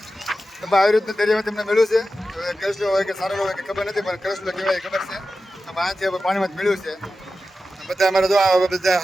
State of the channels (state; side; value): normal; both; correlation 0.92